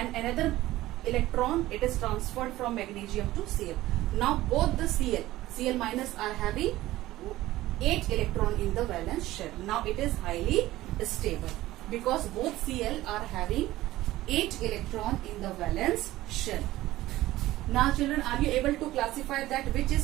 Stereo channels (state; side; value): quieter; left; 16.3 dB